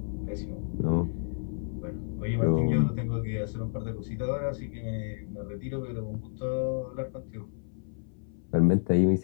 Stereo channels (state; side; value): silent; right; 58 dB below the other